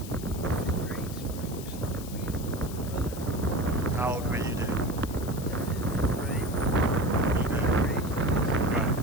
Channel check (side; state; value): left; noise; hiss, 14 dB below the sound